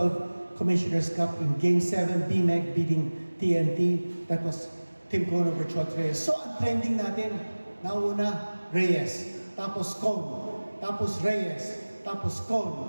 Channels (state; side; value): inverted; both; correlation -1.00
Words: Commissioner's Cup in Game 7, BMEG beating TNT, that was Tim Cohn over Chot Reyes. So ang trending natin, nauna Reyes, tapos Cohn, tapos Reyes, tapos